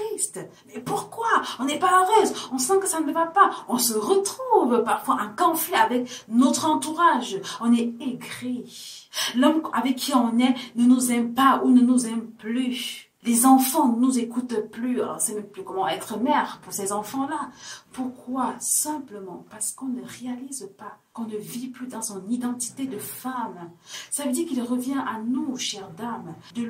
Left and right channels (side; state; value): both; identical; correlation 1.00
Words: Mais pourquoi? On n'est pas heureuse, on sent que ça ne va pas. On se retrouve parfois en conflit avec notre entourage. On est aigri. L'homme avec qui on est ne nous aime pas ou ne nous aime plus. Les enfants ne nous écoutent plus. On ne sait même plus comment être mère pour ces enfants-là. Pourquoi? Simplement parce qu'on ne réalise pas, qu'on ne vit plus dans son identité de femme. Ça veut dire qu'il revient à nous, chères dames, de